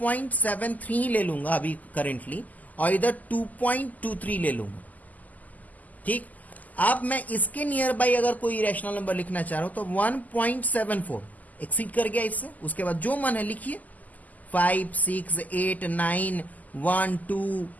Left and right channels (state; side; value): late; right; 0.079 ms